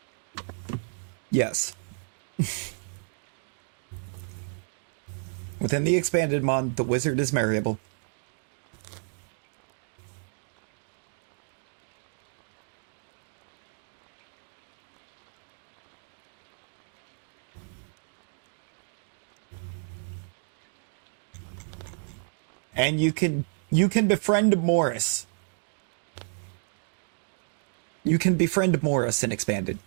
Yes. Within the expanded mod, the wizard is marryable. And you can befriend Morris. You can befriend Morris in expanded.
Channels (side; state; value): left; silent; 57 dB below the other